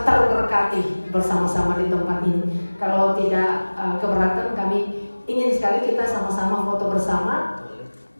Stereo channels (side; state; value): both; inverted; correlation -1.00